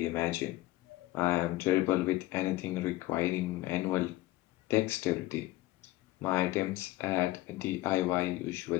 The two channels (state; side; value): quieter; right; 17.5 dB